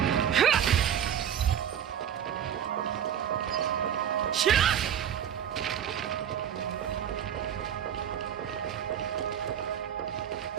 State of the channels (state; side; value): quieter; left; 9.2 dB